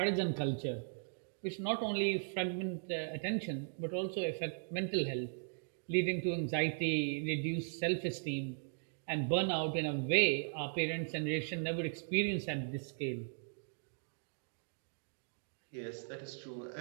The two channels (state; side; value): silent; left; digital silence